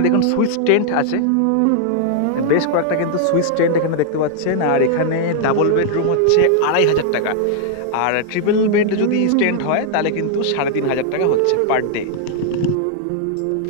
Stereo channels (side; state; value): both; different; correlation -0.01